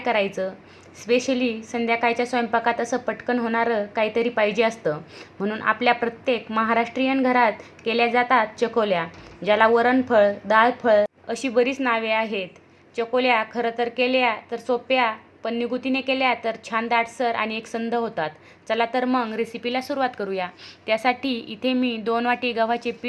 स्पेशली संध्याकाळच्या स्वयंपाकात असं पटकन होणारं काहीतरी पाहिजे असतं. म्हणून आपल्या प्रत्येक महाराष्ट्रीयन घरात केल्या जातात चकोल्या, ज्याला वरणफळ, डाळफळ अशी बरीच नावे आहेत. चकोल्या खरं तर केल्या तर सोप्या, पण निगुतीने केल्या तर छान दाटसर आणि एकसंध होतात. चला तर मग रेसिपीला सुरुवात करूया. त्यासाठी इथे मी 2 वाटी गव्हाचे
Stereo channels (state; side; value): identical; both; correlation 1.00